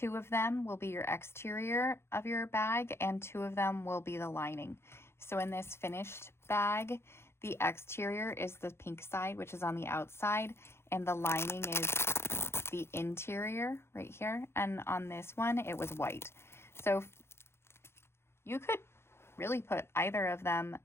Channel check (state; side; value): late; right; 0.12 ms